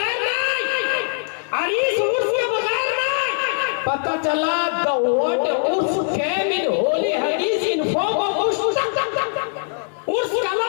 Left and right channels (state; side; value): silent; right; 57 dB below the other